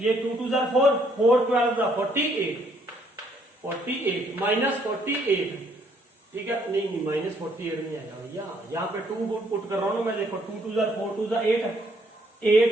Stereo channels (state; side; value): normal; both; correlation 0.67